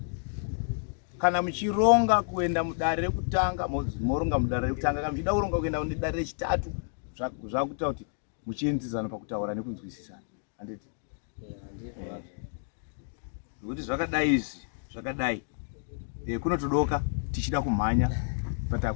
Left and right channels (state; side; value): silent; right; digital silence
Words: Kana muchironga kuenda mudare rekutanga moronga mudare rekutanga. Kana muchida kuronga kuenda mudare rechitatu zvakuita kuti muchienzisana pakutaura nekunzwisisana. Handiti? Nokuti zvakadai kunotodoka tichida kumhanya but